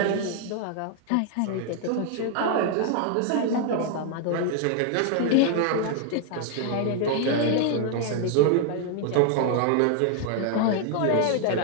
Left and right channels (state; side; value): different; both; correlation 0.00